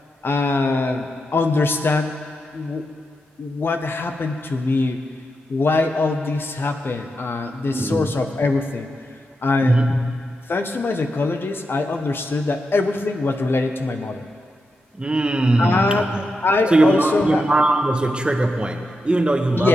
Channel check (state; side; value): normal; both; correlation 0.86